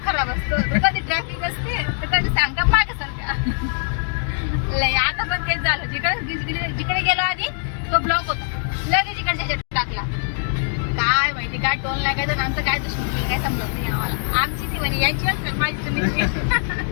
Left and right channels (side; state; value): right; silent; digital silence